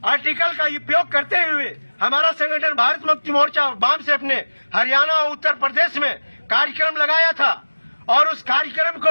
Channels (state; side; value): inverted; both; correlation -1.00